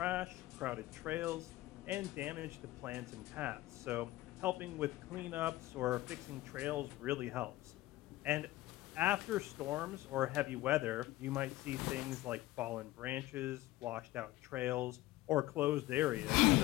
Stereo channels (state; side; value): quieter; right; 17.1 dB